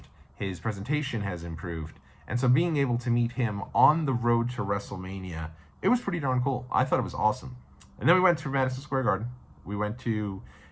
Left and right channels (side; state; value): both; identical; correlation 1.00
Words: His presentation has improved. And so being able to meet him on the road to WrestleMania, it was pretty darn cool. I thought it was awesome. And then we went to Madison Square Garden. We went to